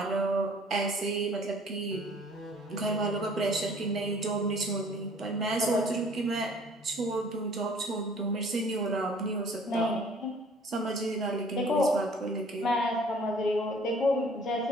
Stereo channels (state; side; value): normal; both; correlation 0.54